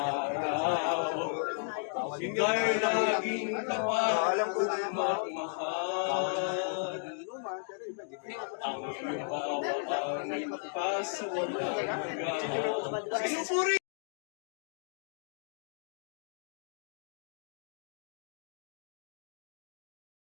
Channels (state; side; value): silent; right; digital silence